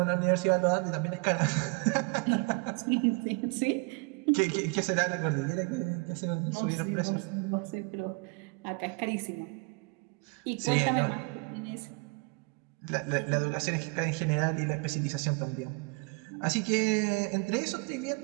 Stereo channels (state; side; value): quieter; left; 30.9 dB